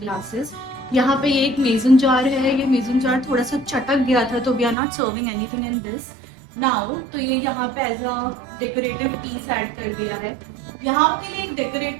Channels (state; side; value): drops out; left; at 4.8 s